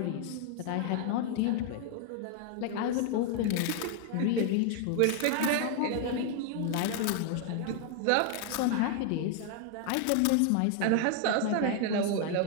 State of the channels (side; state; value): both; different; correlation 0.00